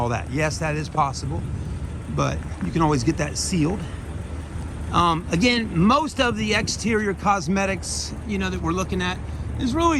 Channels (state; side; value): identical; both; correlation 1.00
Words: that. Yes, that is possible, but you can always get that sealed. Again, most of the exterior cosmetics, that we're looking at is really